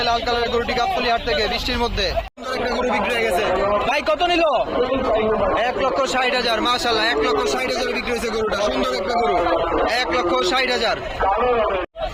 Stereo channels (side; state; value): both; identical; correlation 1.00